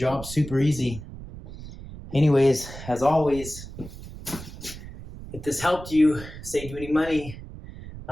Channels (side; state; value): right; noise; rumble, 13 dB below the sound